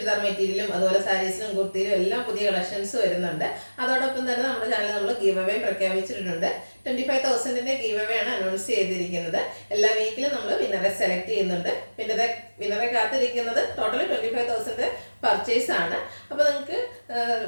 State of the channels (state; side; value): inverted; both; correlation -1.00